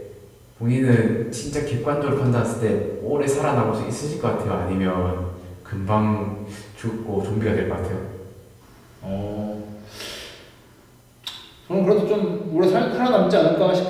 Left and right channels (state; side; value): identical; both; correlation 1.00